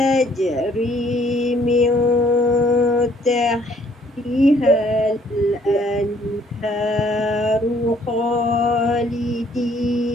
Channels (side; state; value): both; normal; correlation 0.63